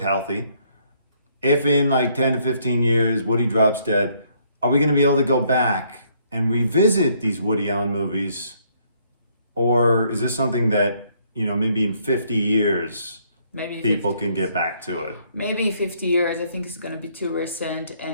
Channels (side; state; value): both; inverted; correlation -0.68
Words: healthy. If in like 10 to 15 years, Woody drops dead, are we going to be able to go back and revisit these Woody Allen movies? Or is this something that, you know, maybe in 50 years, people can get back to it? Maybe 50 years. I think it's going to be too recent.